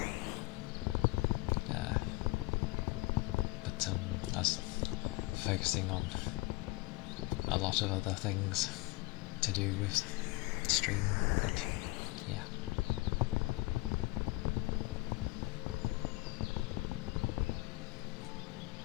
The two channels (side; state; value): right; quieter; 23.0 dB